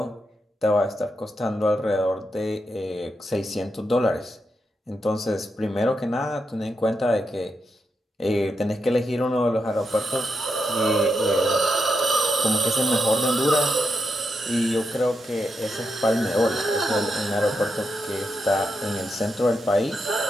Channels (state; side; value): normal; both; correlation 0.85